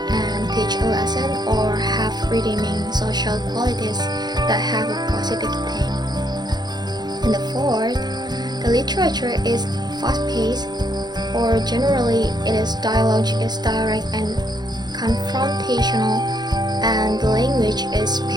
and teach a lesson or have redeeming social qualities that have a positive theme. And the fourth, the literature is fast-paced, or generally it is dialogue is direct and confrontational, and the language is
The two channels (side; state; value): left; late; 0.20 ms